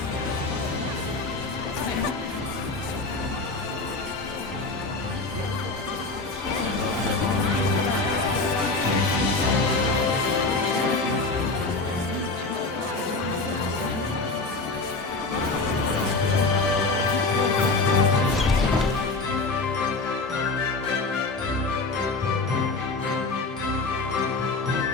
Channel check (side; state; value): right; quieter; 3.5 dB